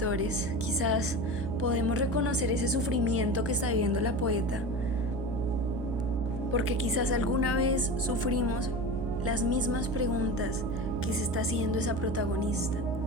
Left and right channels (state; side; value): noise; right; hum, 4 dB below the sound